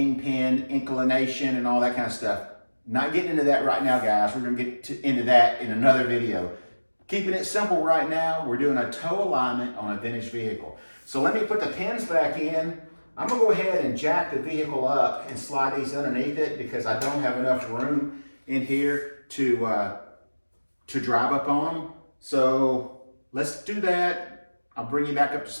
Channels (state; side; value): inverted; both; correlation -1.00